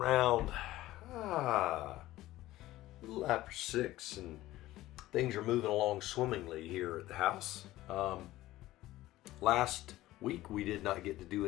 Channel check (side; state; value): right; quieter; 16.2 dB